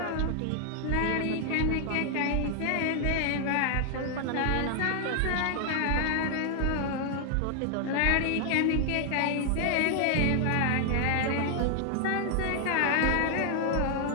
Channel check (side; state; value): both; different; correlation 0.00